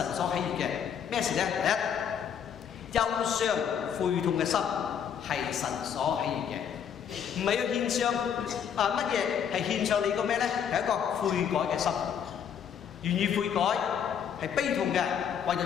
所喜悅嘅咩事咧？第一，憂傷悔痛嘅心係神所喜悅嘅，唔係要獻上乜嘢，係獻上你個咩咧？係一個悔改嘅心，願意悔改。係悲痛嘅，為咗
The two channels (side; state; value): right; quieter; 8.2 dB